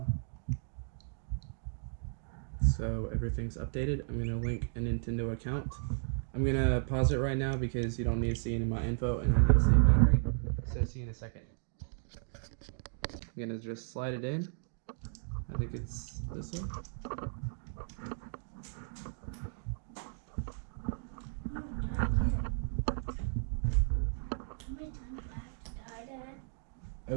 So everything's updated. I'm gonna link a Nintendo account. I'm gonna pause it right now because you don't need to see any of my info and I need to save battery. So see you in a second. I'm gonna just slide it in. I think it's this way. No, die again. How many times do I have to die, Dad?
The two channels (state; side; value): silent; left; digital silence